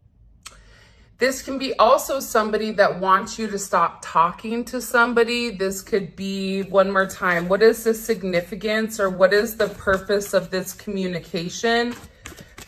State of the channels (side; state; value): both; identical; correlation 1.00